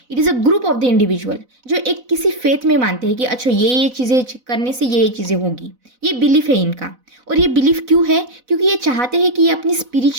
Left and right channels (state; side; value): late; left; 4.0 ms